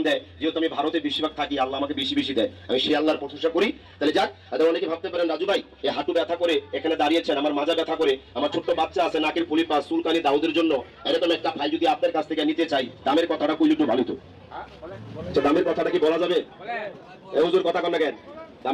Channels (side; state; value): both; identical; correlation 1.00